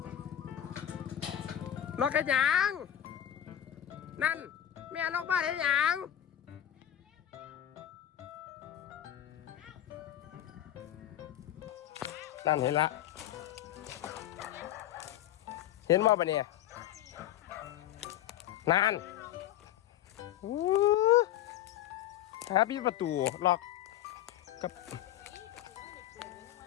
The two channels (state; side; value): quieter; right; 11.8 dB